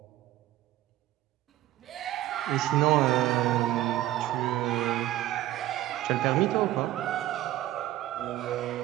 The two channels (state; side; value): quieter; left; 14.5 dB